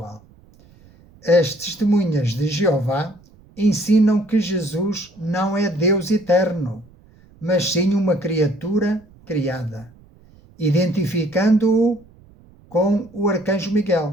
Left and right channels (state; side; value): noise; right; rumble, 27 dB below the sound